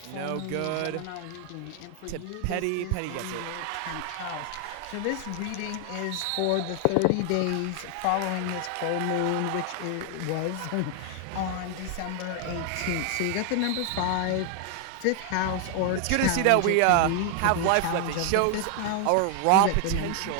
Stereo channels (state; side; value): different; both; correlation 0.00